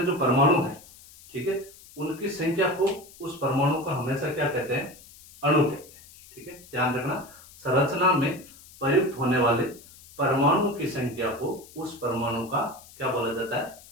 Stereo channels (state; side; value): noise; left; hiss, 21 dB below the sound